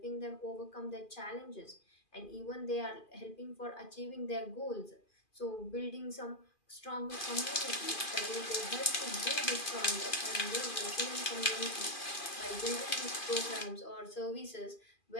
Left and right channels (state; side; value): late; right; 2.4 ms